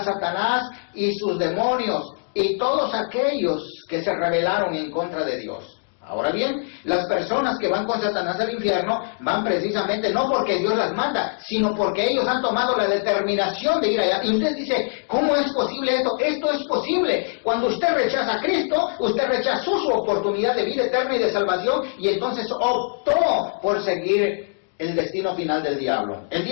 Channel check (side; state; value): right; silent; digital silence